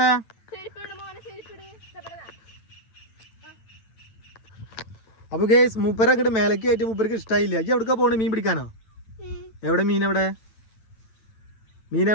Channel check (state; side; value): late; right; 9.1 ms